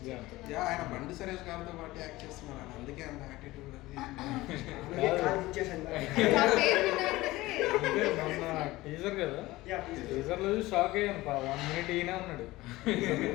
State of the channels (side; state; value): right; quieter; 18.7 dB